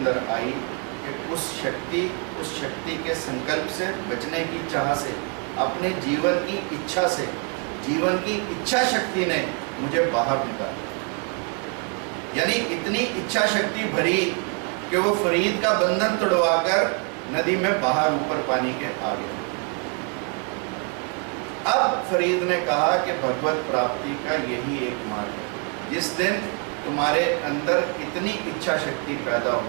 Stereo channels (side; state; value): left; quieter; 38.7 dB